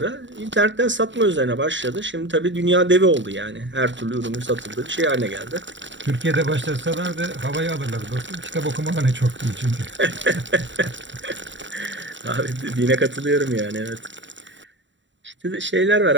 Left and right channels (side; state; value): left; late; 0.54 ms